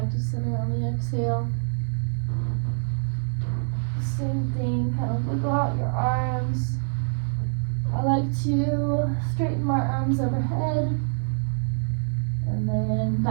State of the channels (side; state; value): left; silent; digital silence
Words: to center on the exhale. Same thing, kind of wiggle out your arms. I like to straighten my arms overhead and then